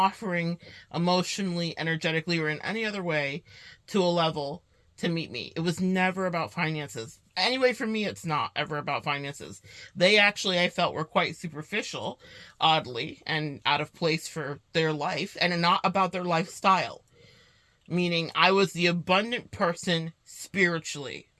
emotionally, energetically, or in any other way to a level to meet me. It was never about finances. Anyway, for me, it's not ever about finances. They actually, I felt, were quite superficial, oddly, and out of place for their life, and not about their lifestyle. Meaning, I was the abundant person spiritually.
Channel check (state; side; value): identical; both; correlation 1.00